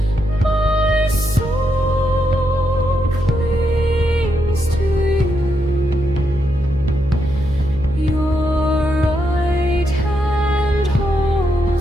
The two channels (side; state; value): right; noise; hum, 11 dB below the sound